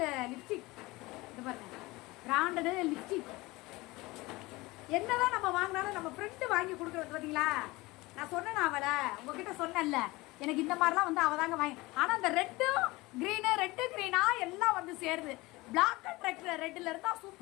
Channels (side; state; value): right; quieter; 21.5 dB